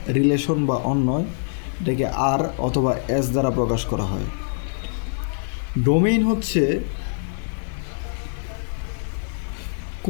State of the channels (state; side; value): silent; right; 63 dB below the other